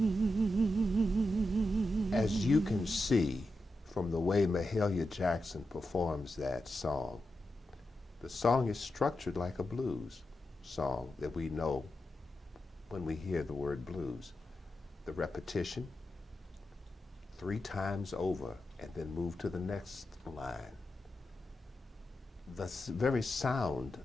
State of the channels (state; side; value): normal; both; correlation 0.89